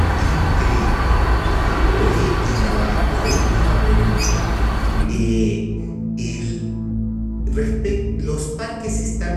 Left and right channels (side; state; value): both; identical; correlation 1.00